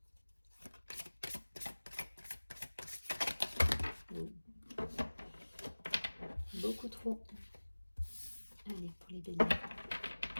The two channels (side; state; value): both; inverted; correlation -1.00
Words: Beaucoup trop. Allez, pour les béliers.